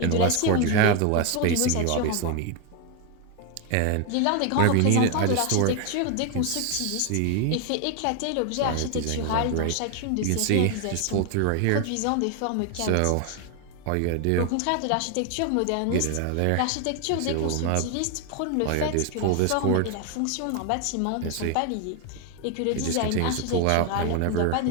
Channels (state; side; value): different; both; correlation 0.01